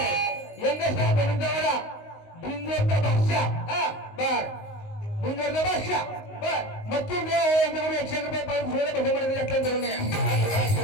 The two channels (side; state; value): right; late; 19 ms